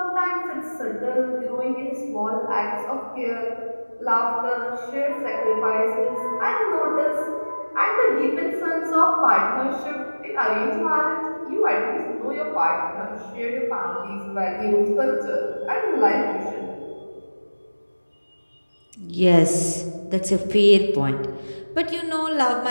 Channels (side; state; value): both; inverted; correlation -1.00